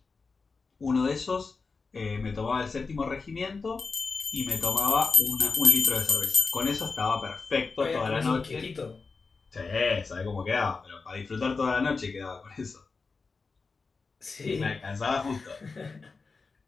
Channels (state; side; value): quieter; right; 4.4 dB